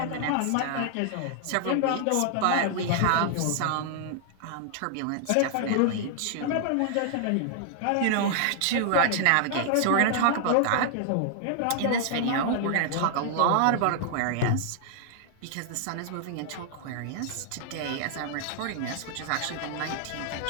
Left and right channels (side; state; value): both; different; correlation -0.01